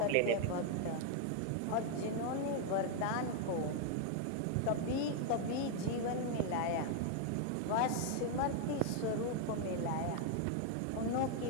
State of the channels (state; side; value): different; both; correlation 0.00